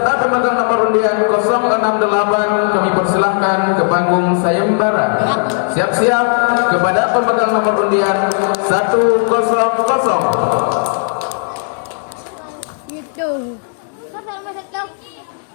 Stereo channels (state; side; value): silent; right; 70 dB below the other